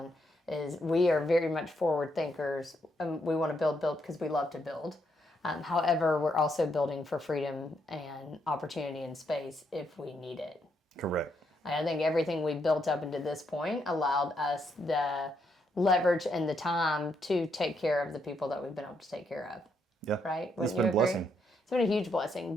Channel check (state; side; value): normal; both; correlation 0.77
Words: is we are very much forward thinkers. We want to build because we love to build. However, we're also building for freedom and opportunity and space if we need it. Correct. I think everything we built up into this point allowed us the leverage and the time to take care of the people that we've been able to take care of. Yeah. Right? It's been a blessing. It's been a huge blessing.